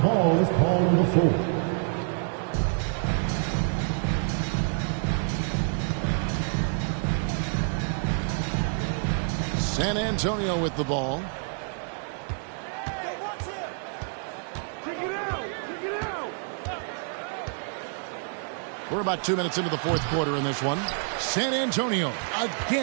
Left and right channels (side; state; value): left; silent; 55 dB below the other